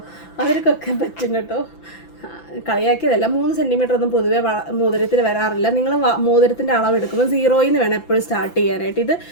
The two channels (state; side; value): late; right; 5.9 ms